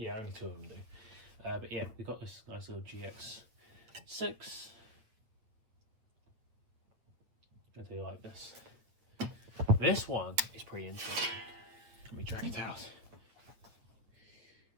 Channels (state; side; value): late; left; 8.6 ms